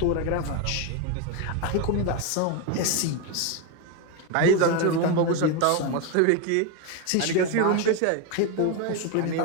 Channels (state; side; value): different; both; correlation 0.02